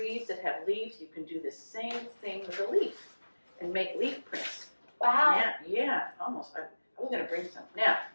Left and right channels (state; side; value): inverted; both; correlation -1.00